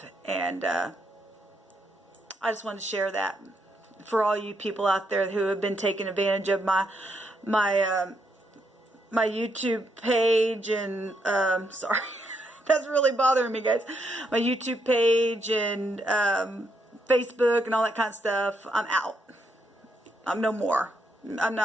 And I just wanted to share that for all you people out there who have been taking advantage of my YouTube page, and sorry, that's really bothering me, guys. My YouTube page and Facebook and all that kind of stuff. I'm out. I'm no more. I'm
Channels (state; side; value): normal; both; correlation 0.77